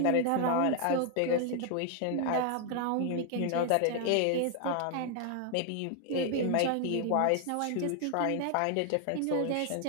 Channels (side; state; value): both; different; correlation 0.00